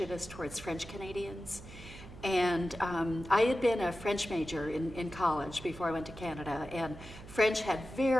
towards French Canadians. And I had been a French major in college before I went to Canada, and French had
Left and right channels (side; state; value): right; noise; hum, 15 dB below the sound